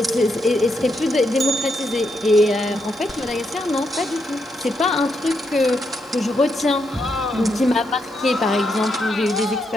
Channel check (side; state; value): right; noise; hiss, 29 dB below the sound